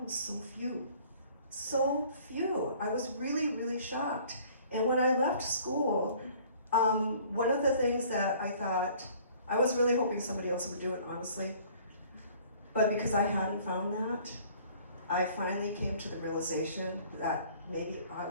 so few. I was really, really shocked. And when I left school, one of the things that I thought, I was really hoping somebody else would do it, honestly, but because I hadn't found that, I finally came to the realization that maybe I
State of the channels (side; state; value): both; inverted; correlation -0.54